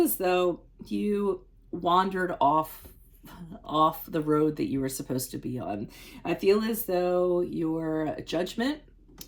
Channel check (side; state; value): both; identical; correlation 1.00